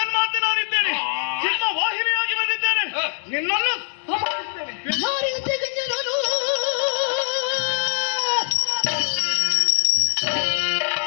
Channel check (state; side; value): silent; right; 59 dB below the other